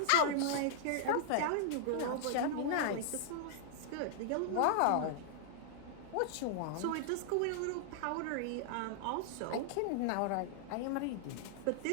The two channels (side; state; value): both; different; correlation -0.01